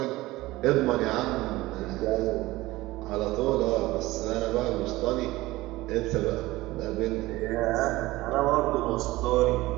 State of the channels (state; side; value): quieter; left; 18.8 dB